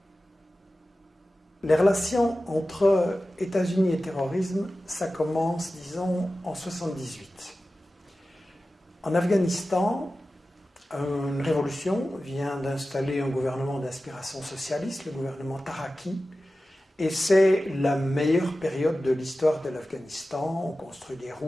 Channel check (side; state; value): both; normal; correlation 0.95